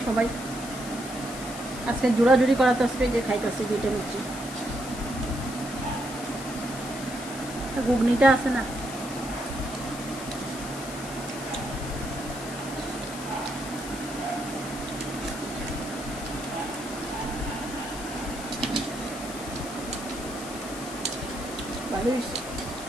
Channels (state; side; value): noise; left; hiss, 12 dB below the sound